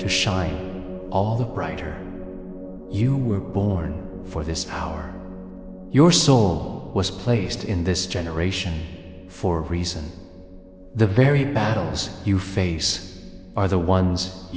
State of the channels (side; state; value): both; identical; correlation 1.00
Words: shine all the brighter. You were born for this hour. Your soul was placed in this generation for a reason. The very battles you face are the ones